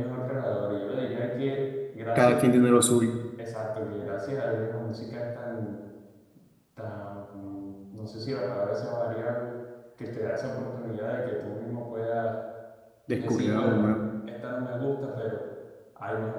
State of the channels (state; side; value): identical; both; correlation 1.00